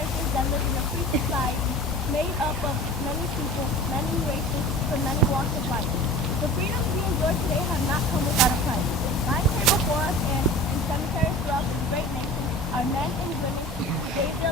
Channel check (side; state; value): both; normal; correlation 0.39